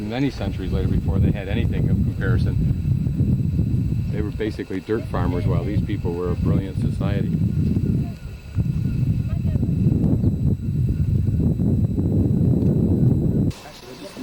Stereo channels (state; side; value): identical; both; correlation 1.00